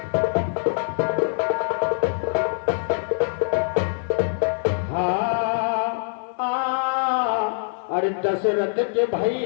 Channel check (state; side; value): silent; right; digital silence